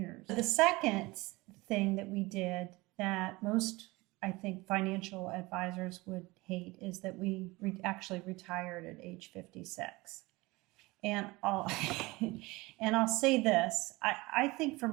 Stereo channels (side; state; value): left; quieter; 22.3 dB